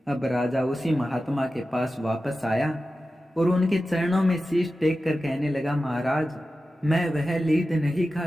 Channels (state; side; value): normal; both; correlation 0.93